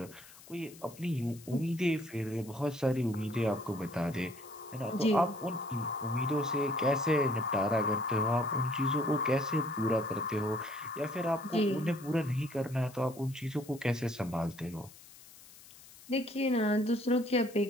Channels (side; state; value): left; noise; hiss, 21 dB below the sound